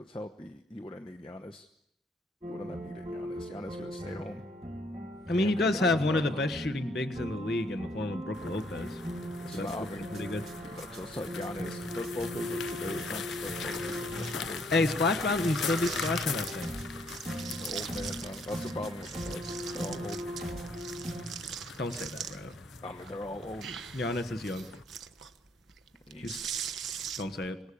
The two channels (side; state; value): both; normal; correlation 0.67